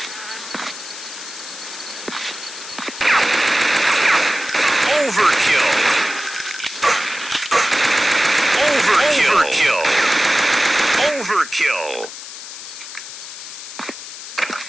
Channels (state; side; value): noise; left; hiss, 12 dB below the sound